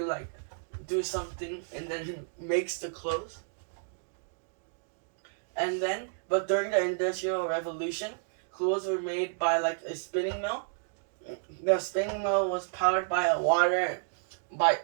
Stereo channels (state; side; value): silent; left; digital silence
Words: like, do something, and then it makes the clothes. And then, but during the Industrial Revolution, clothes were made by, like, a spinning mill. The spinning mill was powered by water,